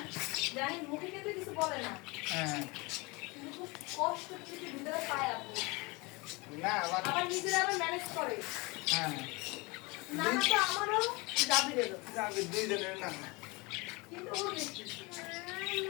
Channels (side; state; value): right; quieter; 26.0 dB